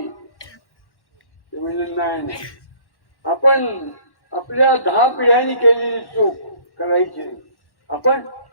ते म्हणजे नाही, आपण आपल्या 10 पिढ्यांनी केलेली चूक करायची नाही. आपण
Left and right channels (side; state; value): right; late; 1.1 ms